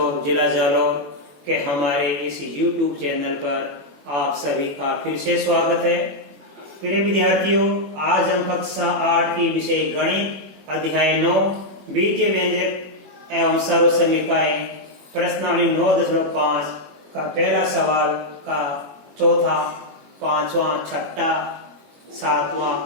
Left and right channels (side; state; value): left; late; 21 ms